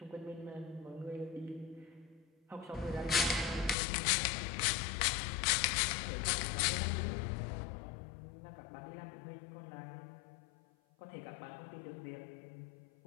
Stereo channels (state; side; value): drops out; right; at 3.8 s